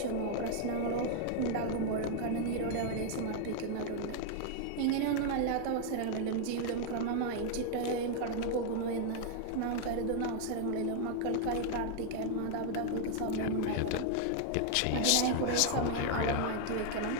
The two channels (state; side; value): different; both; correlation 0.00